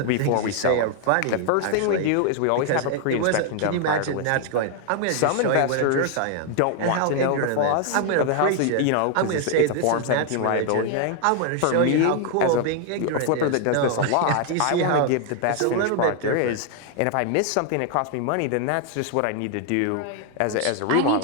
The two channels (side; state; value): both; different; correlation 0.00